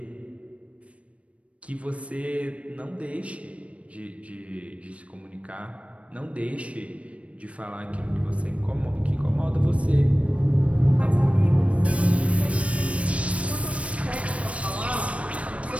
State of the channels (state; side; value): late; left; 0.063 ms